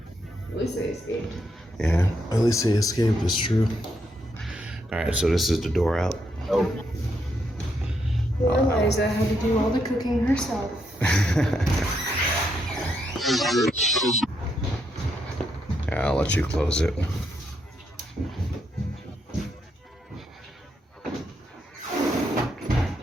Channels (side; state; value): both; normal; correlation 0.79